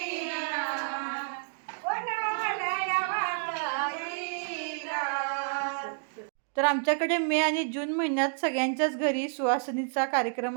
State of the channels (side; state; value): left; silent; 58 dB below the other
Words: कोणाला वाटईना. तर आमच्याकडे मे आणि जून महिन्यात सगळ्यांच्याच घरी सुवासिनीचा